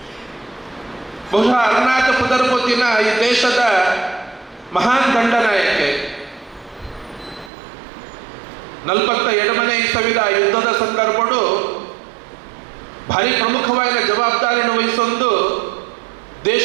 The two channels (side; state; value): left; drops out; at 7.5 s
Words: ಬಹುಶಃ ಅರುಣಾಚ ಪುದರ್ಪೊತ್ತಿನ ಈ ದೇಶದ ಮಹಾನ್ ದಂಡನಾಯಕೆ 47ನೇ ಇಸವಿದ ಯುದ್ಧದ ಸಂದರ್ಭಡು ಭಾರಿ ಪ್ರಮುಖವಾದ ಜವಾಬ್ದಾರಿಯನ್ನು ವಹಿಸೊಂದು